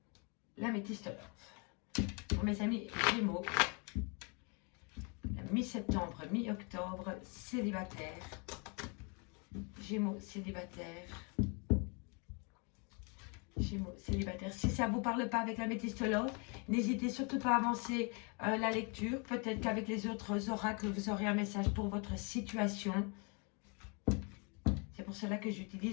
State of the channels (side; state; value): right; quieter; 34.2 dB